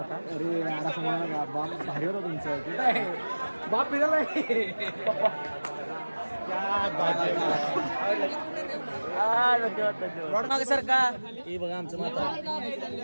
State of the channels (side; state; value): both; inverted; correlation -1.00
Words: अरे असं म्हणा का, बाप भारी होता तुमचं. बाप फिरायला धन्यवाद सर का. हे बघा आमचं माता.